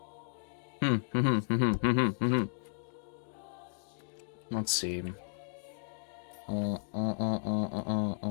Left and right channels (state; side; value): silent; right; digital silence